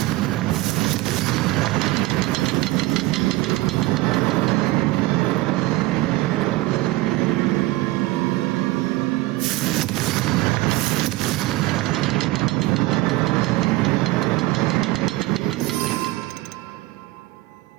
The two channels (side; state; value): left; quieter; 19.1 dB